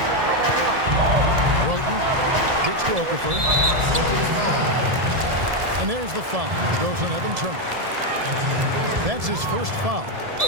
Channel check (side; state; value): left; late; 1.7 ms